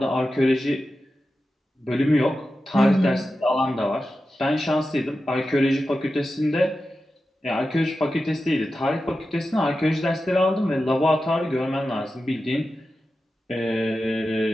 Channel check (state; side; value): normal; both; correlation 0.92